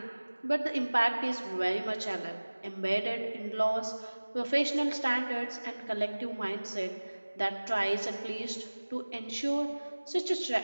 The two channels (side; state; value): both; inverted; correlation -1.00